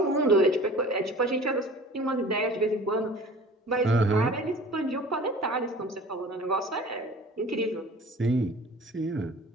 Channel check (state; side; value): normal; both; correlation 0.44